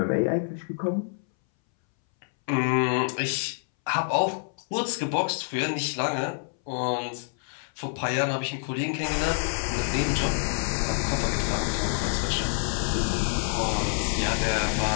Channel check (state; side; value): silent; right; 60 dB below the other